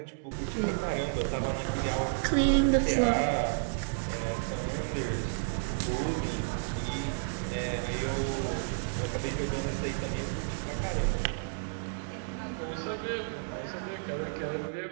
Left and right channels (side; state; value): left; silent; digital silence